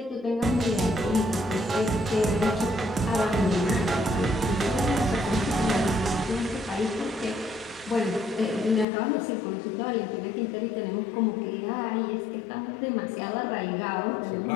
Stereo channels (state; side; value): drops out; right; at 8.8 s